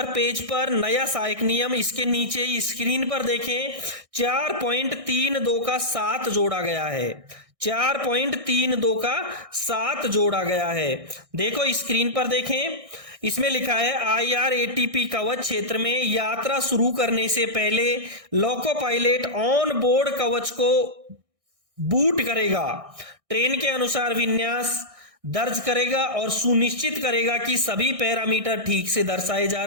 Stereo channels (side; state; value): left; late; 1.6 ms